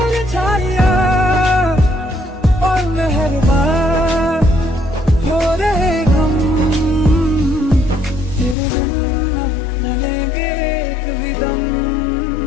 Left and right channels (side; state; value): right; drops out; at 8.6 s